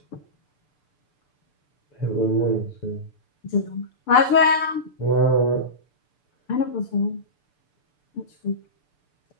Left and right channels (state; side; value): late; right; 6.8 ms